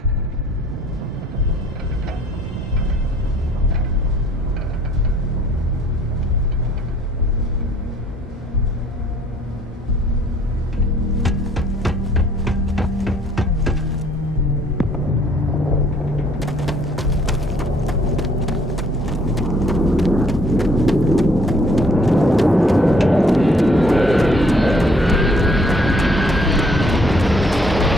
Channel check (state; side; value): normal; both; correlation 0.61